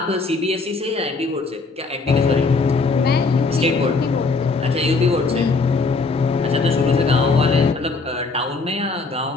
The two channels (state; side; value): quieter; right; 4.0 dB